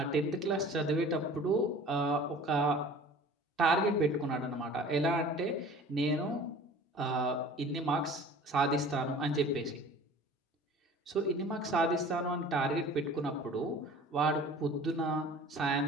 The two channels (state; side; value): normal; both; correlation 0.45